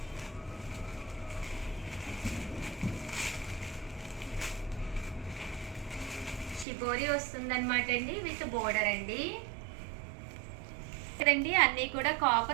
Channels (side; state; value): left; drops out; at 6.7 s